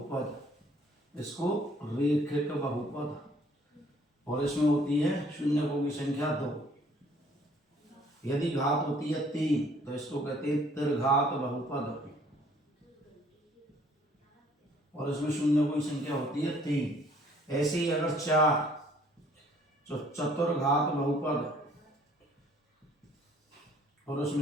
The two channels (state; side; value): normal; both; correlation 0.59